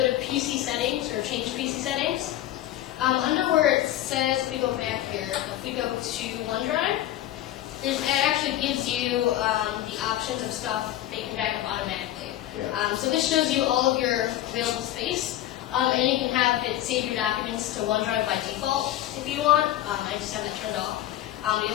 PC settings, or change PC settings, under where it says, if we go back here, if we go to OneDrive, it actually gives you the options of stuff that you can back up automatically. Yeah. So this shows you all of your available space, and you can have it save your documents to OneDrive by default if you want. I just have it turned off.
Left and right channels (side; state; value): right; quieter; 13.7 dB